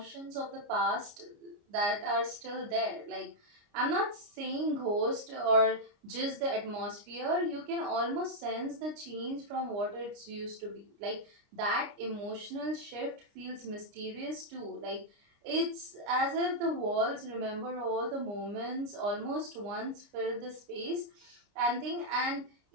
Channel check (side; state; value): left; late; 29 ms